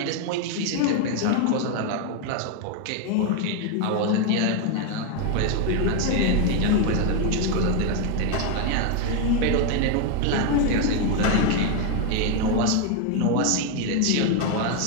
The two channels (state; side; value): different; both; correlation 0.01